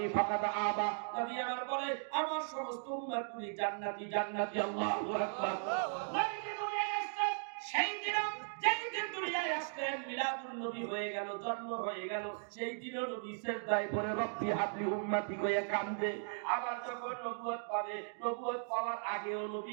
ফাকাদ আবা নবী আমার বলে আমার সমস্ত উম্মতগুলি জান্নাতি জান্নাতি আল্লাহু আকবার নবী দুনিয়ায় আসছেন সেই দিন যেই দিন দুনিয়ায় আসলেন মিলাদুন নবী হয়ে গেল জন্ম হয়ে গেল সেই দিনও নবী সেজদায় পড়ে রব্বি হাবলি উম্মতি কইয়া কান্দে আবার যখন নবুয়ত পাবে নবুয়ত পাওয়ার আগেও নবী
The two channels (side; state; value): left; silent; digital silence